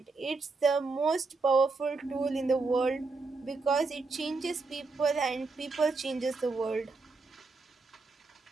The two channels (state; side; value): quieter; left; 3.9 dB